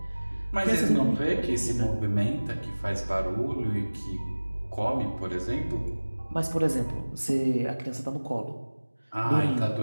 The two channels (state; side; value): inverted; both; correlation -1.00